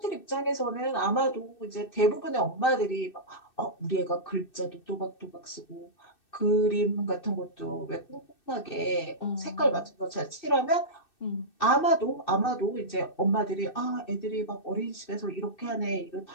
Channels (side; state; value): right; late; 2.6 ms